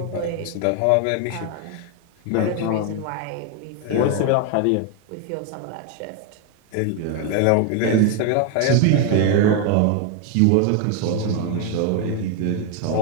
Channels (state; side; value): different; both; correlation 0.01